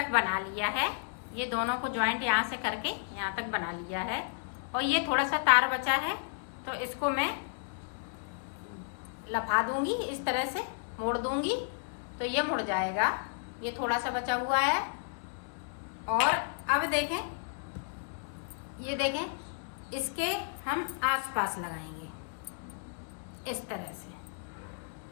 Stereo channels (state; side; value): silent; right; 56 dB below the other